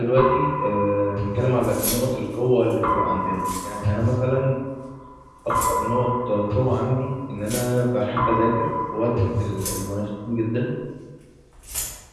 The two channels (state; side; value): identical; both; correlation 1.00